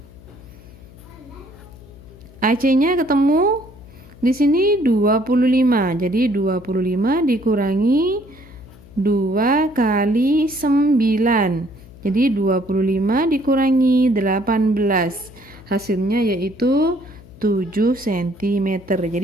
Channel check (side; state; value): left; noise; hum, 21 dB below the sound